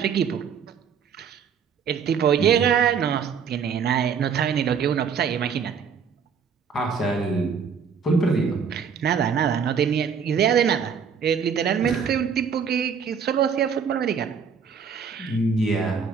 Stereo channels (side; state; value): left; quieter; 6.6 dB